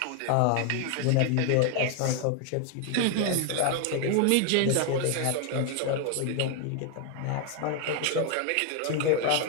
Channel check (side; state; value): both; different; correlation 0.00